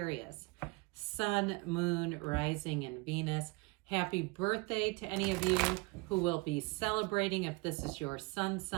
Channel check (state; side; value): quieter; left; 27.3 dB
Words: Sun, Moon, Rising, and Venus. Happy birthday to any of you who will be celebrating if this is your sun